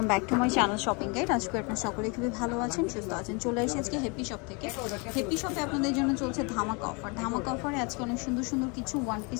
back to my channel shopping guide. আজকে আপনারা সকলে খুবই ভালো আছেন, সুস্থ আছেন। চলে এসেছি আজকে হ্যাপি শপ থেকে। হ্যাপি শপে আপনাদের জন্য চলছে ধামাকা অফার। ধামাকা অফারে আজকে অনেক সুন্দর সুন্দর কিছু ওয়ান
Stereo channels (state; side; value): quieter; right; 31.5 dB